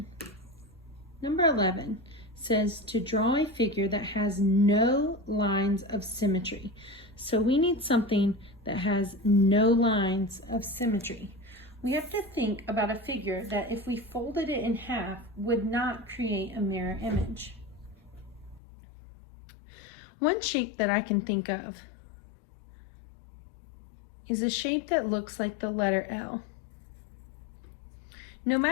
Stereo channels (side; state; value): right; drops out; at 18.6 s